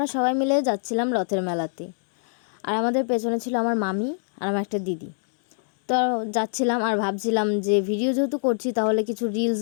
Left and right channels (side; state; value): right; silent; digital silence